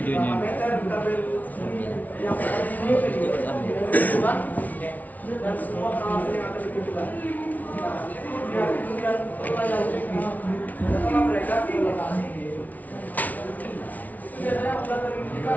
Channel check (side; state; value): right; late; 0.075 ms